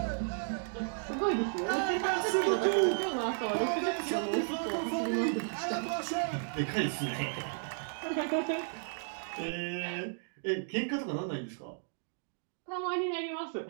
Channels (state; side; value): silent; left; digital silence